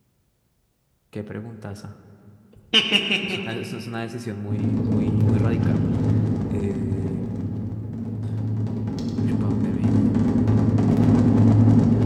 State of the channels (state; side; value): identical; both; correlation 1.00